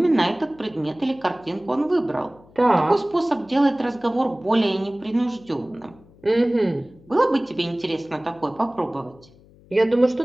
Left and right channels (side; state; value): left; noise; hum, 26 dB below the sound